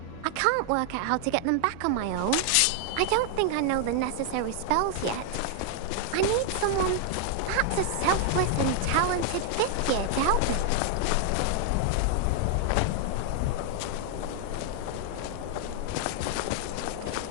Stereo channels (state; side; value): different; both; correlation 0.00